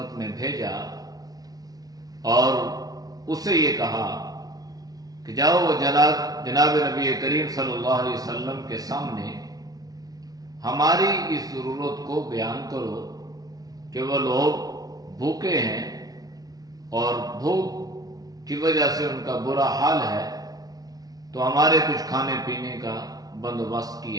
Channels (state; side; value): late; left; 0.18 ms